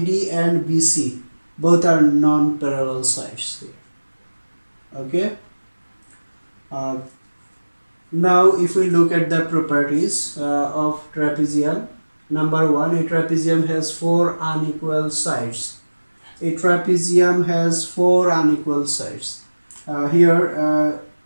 BC both are non-parallel sides here. Okay. Now if we look at the properties of trapezium, number one, a trapezium has four unequal sides. A trapezium has four unequal sides. Here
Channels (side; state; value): both; inverted; correlation -1.00